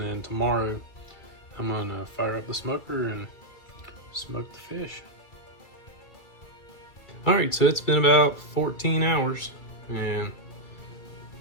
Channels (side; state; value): right; late; 2.1 ms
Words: then tomorrow, I'm going to fire up the smoker and smoke the fish. All right, so it's been about 14 hours, and